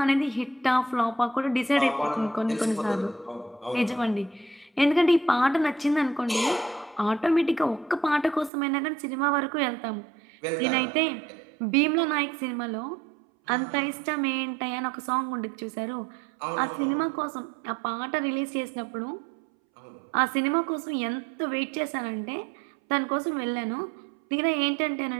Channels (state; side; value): drops out; left; at 8.5 s